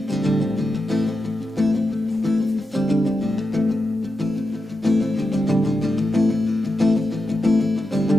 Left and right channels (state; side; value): normal; both; correlation 0.88